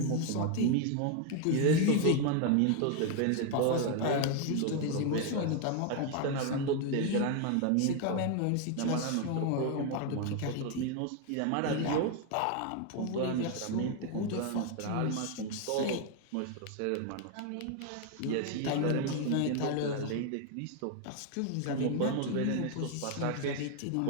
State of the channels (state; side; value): different; both; correlation 0.01